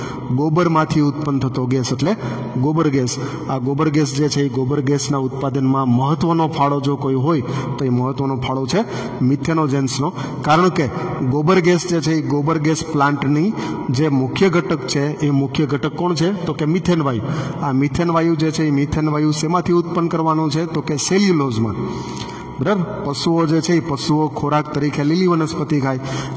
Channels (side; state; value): both; identical; correlation 1.00